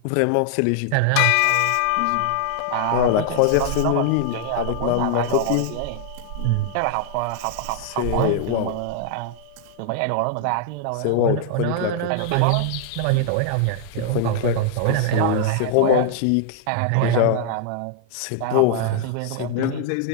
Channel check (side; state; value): both; different; correlation 0.00